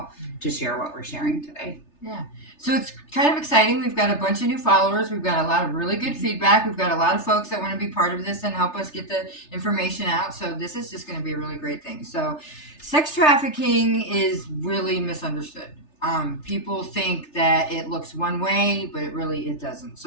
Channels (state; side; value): late; right; 3.3 ms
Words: to share what we're sharing today. Yeah. So it's kind of exciting. We've got a bunch of new followers. We've got a lot of really good feedback. We've got a lot of folks that want to be part of this and help us get the information out. So this is just going to be a really great thing. So sex trafficking is really misunderstood. People think that it looks one way, but it doesn't.